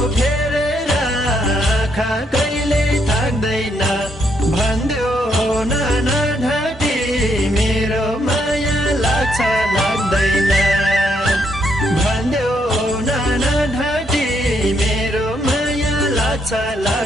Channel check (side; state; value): both; normal; correlation 0.75